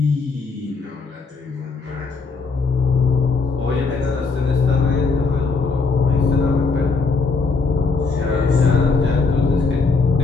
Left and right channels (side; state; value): right; quieter; 4.3 dB